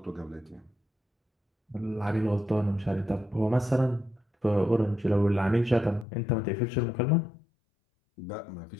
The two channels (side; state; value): right; drops out; at 6.1 s